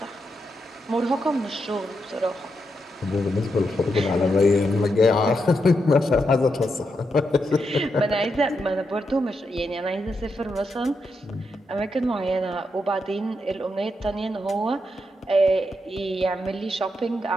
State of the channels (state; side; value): normal; both; correlation 0.83